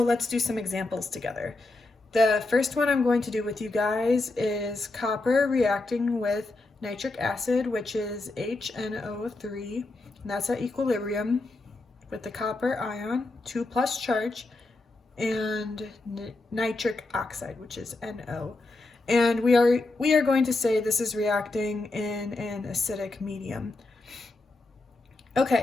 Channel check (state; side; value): quieter; right; 3.1 dB